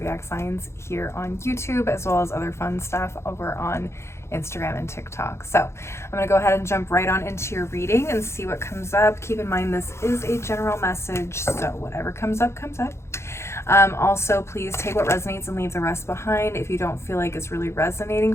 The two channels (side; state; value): right; late; 0.13 ms